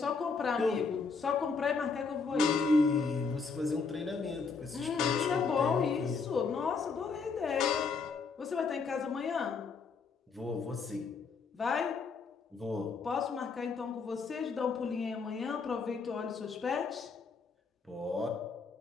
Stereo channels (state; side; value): quieter; right; 4.9 dB